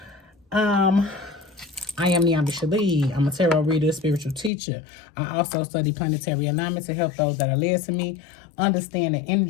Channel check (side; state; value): right; drops out; at 4.5 s